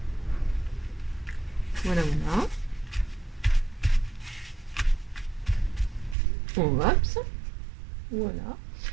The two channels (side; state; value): left; drops out; at 6.2 s